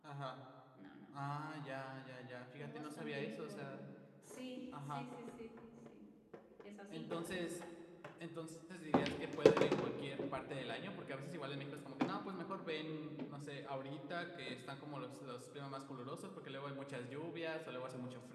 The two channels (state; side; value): identical; both; correlation 1.00